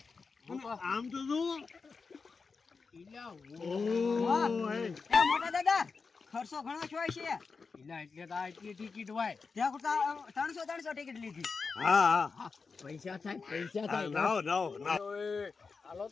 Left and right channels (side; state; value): right; quieter; 4.8 dB